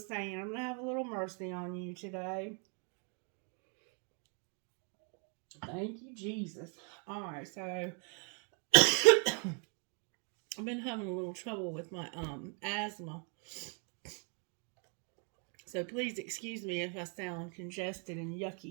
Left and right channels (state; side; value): quieter; left; 38.5 dB